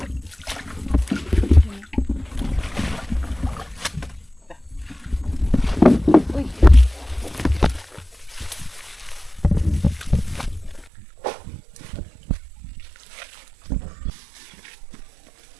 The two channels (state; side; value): drops out; left; at 10.9 s